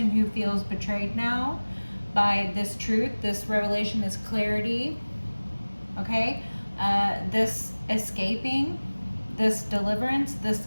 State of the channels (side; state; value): both; inverted; correlation -1.00